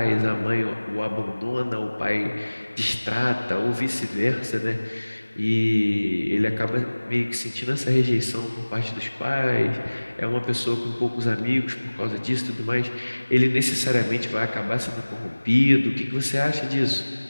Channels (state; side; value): inverted; both; correlation -1.00